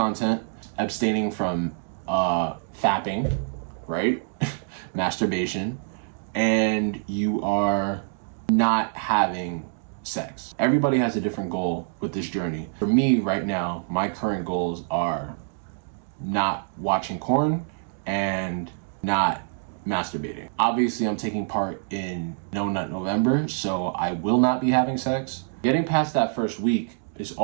abstaining from fapping, right? Masturbation, and you are not having sex. Everybody has a different goal with this journey. For me right now, my current goals are not watching porn and not masturbating. Obviously, I'm taking part in No Nut November, so I will not be having sex. Getting past that first week is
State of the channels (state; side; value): silent; left; digital silence